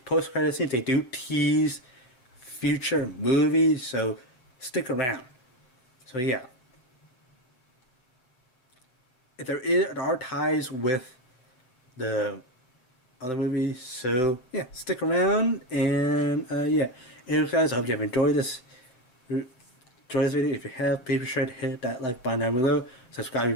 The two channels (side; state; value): right; late; 7.8 ms